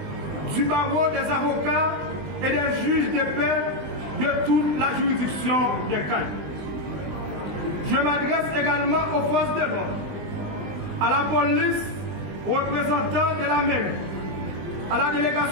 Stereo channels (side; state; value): left; late; 20 ms